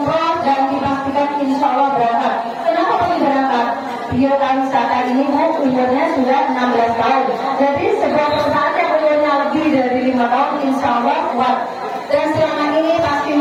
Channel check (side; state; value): both; identical; correlation 1.00